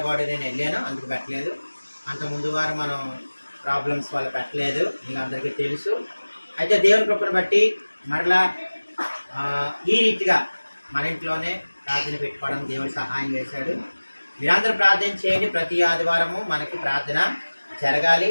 నేను వెళ్ళాను, అందుకు పెట్టలేదు. అంత ముందు వారం మనం ప్రాబ్లమ్స్ వల్ల పెట్టలేదు, మీకు అందరికీ తెలుసు. అయితే దేవుని కృపను బట్టి మరలా ఈ రీతిగా మన ఇంట్లోనే ప్రార్థన పెట్టుకోవడం దేవుడు సహాయం చేశాడు. మీరందరూ ప్రార్థన చేయండి. ప్రతి ఆదివారము మనకి ప్రార్థన జరగాలి.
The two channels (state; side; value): inverted; both; correlation -1.00